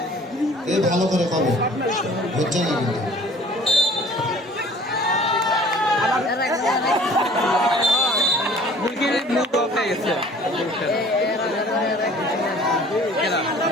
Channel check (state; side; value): normal; both; correlation 0.50